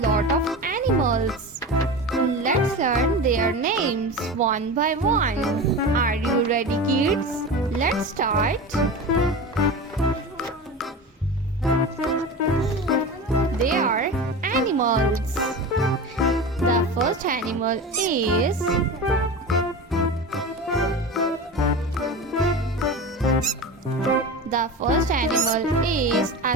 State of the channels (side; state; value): both; normal; correlation 0.28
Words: of animals. Let's learn their names one by one. Are you ready, kids? Let's start. They are animals. The first animal is a